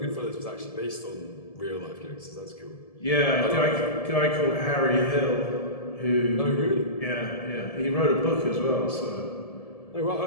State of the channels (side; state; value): right; late; 1.7 ms